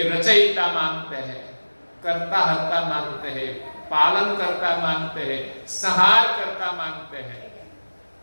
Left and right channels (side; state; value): both; inverted; correlation -1.00